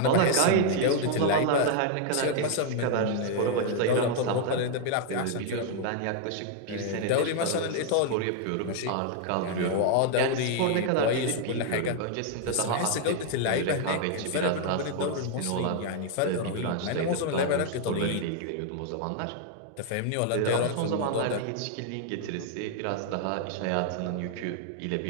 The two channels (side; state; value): both; different; correlation 0.00